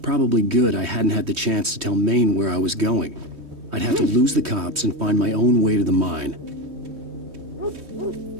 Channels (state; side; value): late; left; 3.2 ms